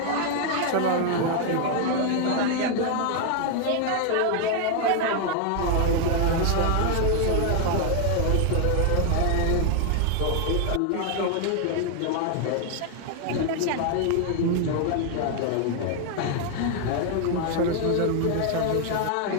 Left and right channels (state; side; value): different; both; correlation 0.00